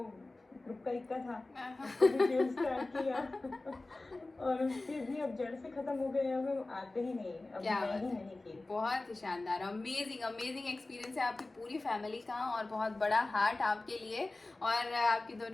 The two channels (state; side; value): quieter; right; 3.0 dB